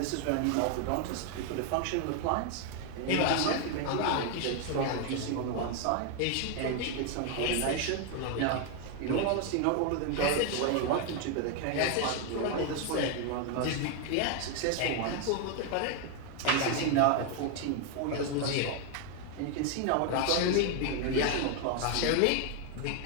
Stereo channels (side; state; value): both; different; correlation 0.01